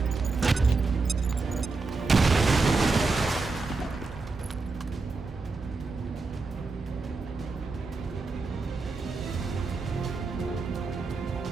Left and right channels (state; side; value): quieter; left; 3.9 dB